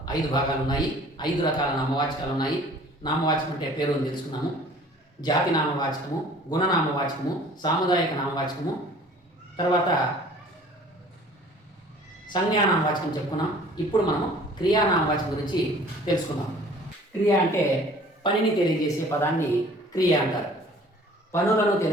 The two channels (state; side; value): normal; both; correlation 0.50